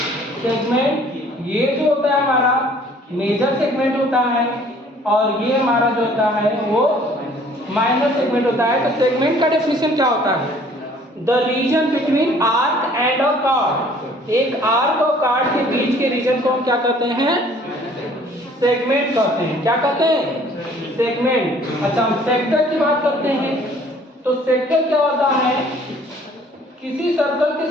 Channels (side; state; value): both; normal; correlation 0.55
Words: सेगमेंट. ये जो होता है हमारा मेजर सेगमेंट होता है और ये हमारा जो होता है वो माइनर सेगमेंट होता है. तो सेगमेंट का डेफिनेशन क्या होता है? The region between arc and a card. एक आर्क और कार्ड के बीच के रीजन को हम क्या कहते हैं? सेगमेंट कहते हैं. क्या कहते हैं? सेगमेंट. अच्छा हम सेक्टर की बात करते हैं. तो सेक्टर क्या होता है? किसी सर्कल